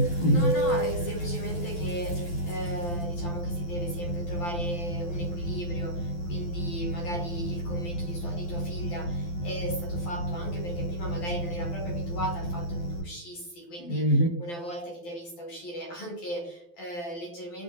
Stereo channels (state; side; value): late; right; 12 ms